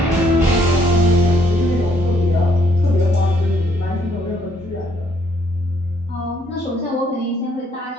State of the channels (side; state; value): both; normal; correlation 0.68